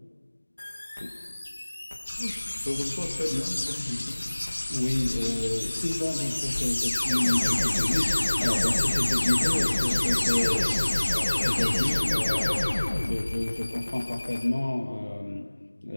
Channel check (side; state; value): both; inverted; correlation -1.00